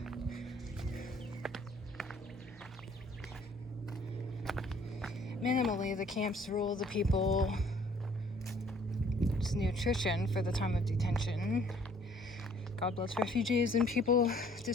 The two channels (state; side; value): normal; both; correlation 0.59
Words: Minimally, the camps rule the people's nutrition for the time of detention. God bless refugees and people